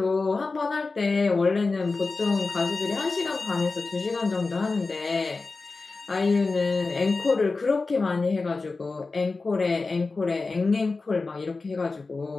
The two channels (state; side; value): quieter; right; 3.8 dB